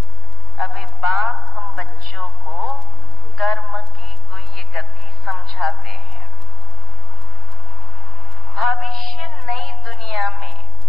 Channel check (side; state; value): both; normal; correlation 0.56